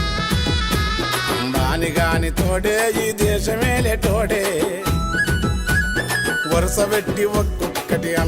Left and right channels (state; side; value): identical; both; correlation 1.00